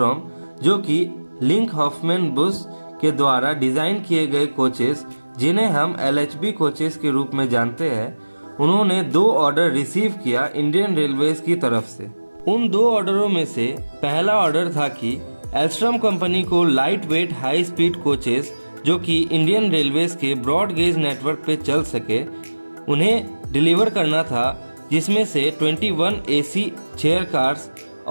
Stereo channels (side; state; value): both; inverted; correlation -1.00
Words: जो कि लिंक हॉफमैन बुश के द्वारा डिज़ाइन किए गए कोचेस, जिन्हें हम एलएचबी कोचेस के रूप में जानते हैं, उन्होंने 2 ऑर्डर रिसीव किया इंडियन रेलवेज की तरफ से। उन 2 ऑर्डरों में से पहला ऑर्डर था कि एल्स्ट्रॉम कंपनी को light weight high speed coaches, जो कि इंडियन रेलवेज के ब्रॉड गेज नेटवर्क पे चल सके, उन्हें डिलीवर करना था, जिसमें से 21 एसी चेयर कार्स